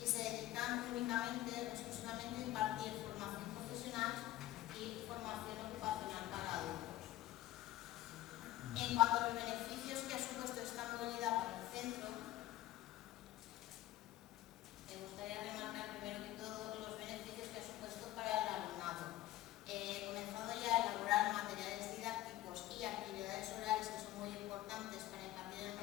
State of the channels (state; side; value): quieter; right; 14.9 dB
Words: se dedican únicamente, exclusivamente a impartir formación profesional y formación ocupacional para adultos. En cuanto a los beneficios que ha supuesto esta movilidad para el centro, me gustaría remarcar primero que todo los beneficios que ha supuesto para el alumnado. Comenzado ya a elaborar materiales didácticos y actividades orales que son muy importantes para impartir el